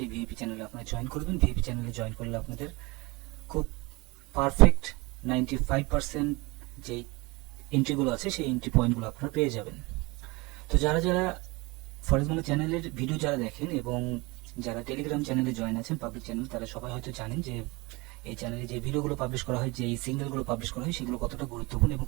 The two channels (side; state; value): left; quieter; 24.6 dB